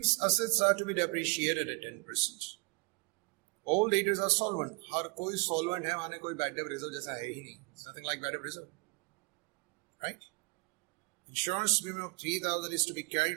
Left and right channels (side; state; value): left; quieter; 30.4 dB